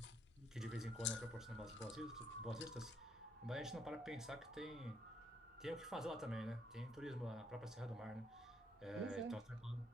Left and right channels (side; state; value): both; normal; correlation 0.71